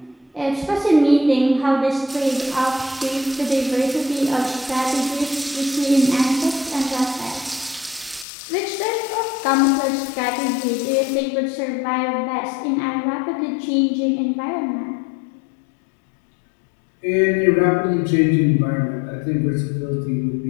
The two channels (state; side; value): drops out; right; at 8.2 s